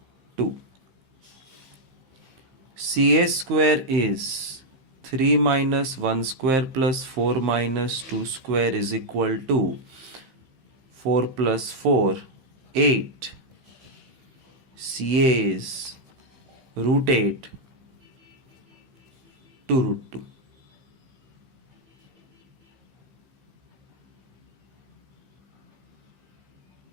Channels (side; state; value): left; late; 15 ms